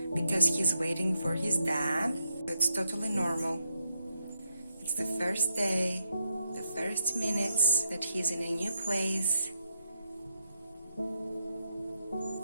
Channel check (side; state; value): both; inverted; correlation -0.81